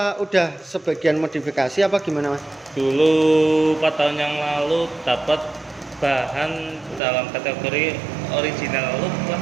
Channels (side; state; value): left; drops out; at 7.0 s